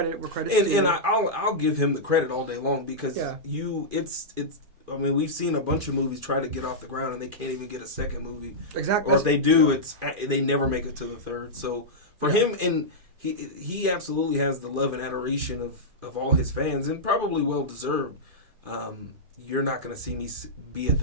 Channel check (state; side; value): late; left; 2.5 ms